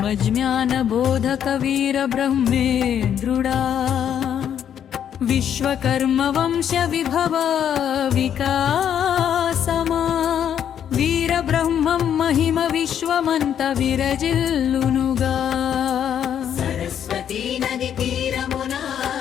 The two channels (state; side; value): quieter; right; 9.2 dB